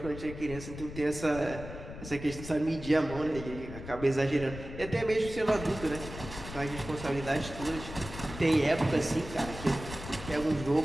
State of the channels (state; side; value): noise; left; rumble, 11 dB below the sound